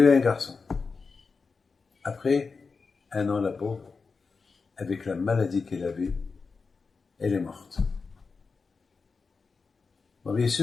eu un garçon. Après, un an, la pauvre, avec la maladie qu'elle avait, elle est morte. Bon, bien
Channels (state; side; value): quieter; right; 4.7 dB